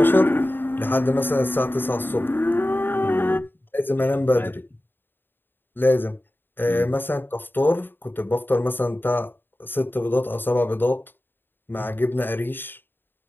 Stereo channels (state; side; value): late; right; 0.096 ms